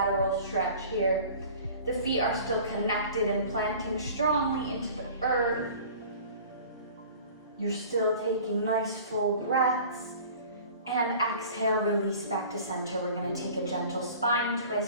stretch here. The feet are still connected and planting strongly into the earth. You're still taking nice full breaths. And exhale, release back to center. We're gonna take a gentle spine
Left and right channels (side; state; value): both; inverted; correlation -0.44